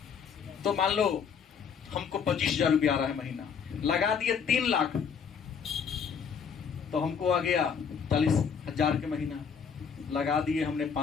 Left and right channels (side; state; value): right; quieter; 6.7 dB